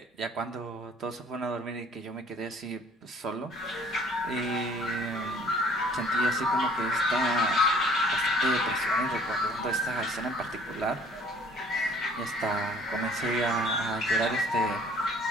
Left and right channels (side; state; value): both; normal; correlation 0.55